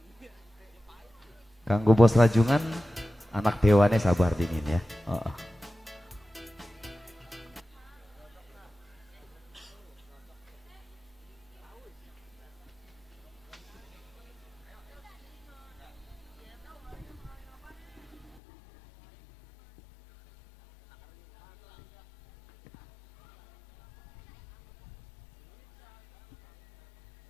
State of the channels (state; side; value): drops out; right; at 18.4 s